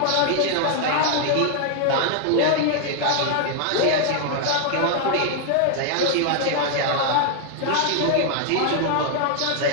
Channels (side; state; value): both; different; correlation 0.00